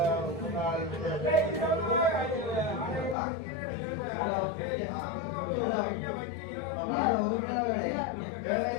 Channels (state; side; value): drops out; right; at 3.2 s